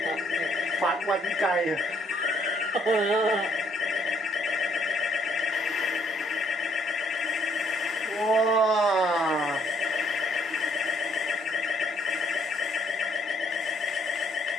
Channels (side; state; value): both; normal; correlation 0.68